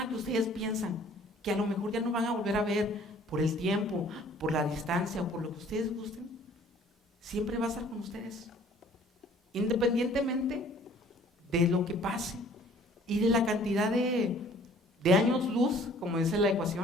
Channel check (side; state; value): both; normal; correlation 0.54